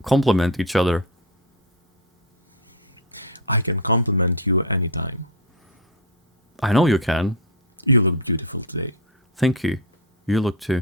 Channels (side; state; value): both; normal; correlation 0.12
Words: complement each other. I can compliment you anytime. I know you can. You look beautiful today. Thank you. You look too.